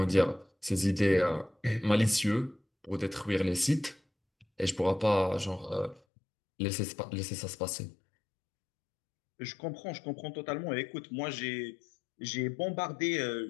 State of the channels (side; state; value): right; drops out; at 6.0 s